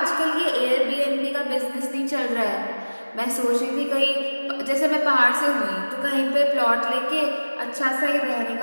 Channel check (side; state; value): both; inverted; correlation -1.00